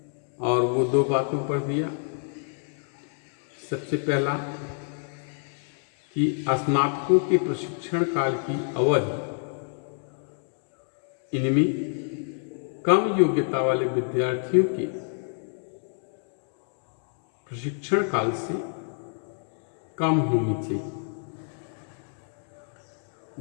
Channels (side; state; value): right; silent; 57 dB below the other